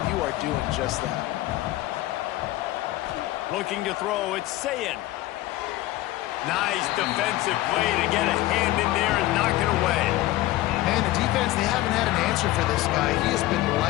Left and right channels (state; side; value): quieter; right; 16.6 dB